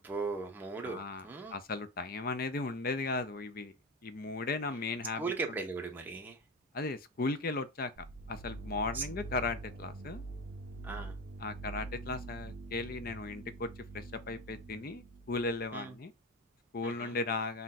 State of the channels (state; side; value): normal; both; correlation 0.21